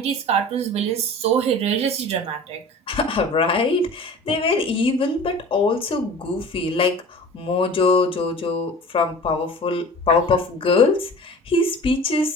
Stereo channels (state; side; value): normal; both; correlation 0.40